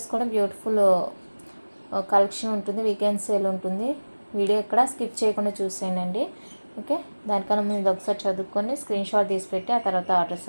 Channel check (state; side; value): inverted; both; correlation -1.00